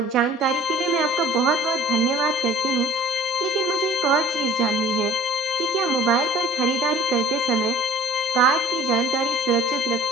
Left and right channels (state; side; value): normal; both; correlation 0.51